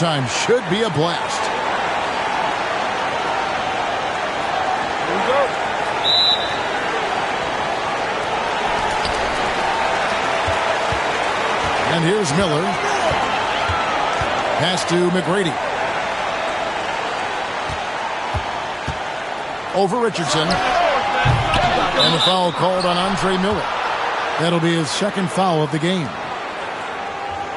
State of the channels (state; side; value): identical; both; correlation 1.00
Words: Should be a blast. Here we go. And here's Miller. Pass to McGrady. Over Richardson. And a foul called on Andre Miller. That'll be his second foul of the game.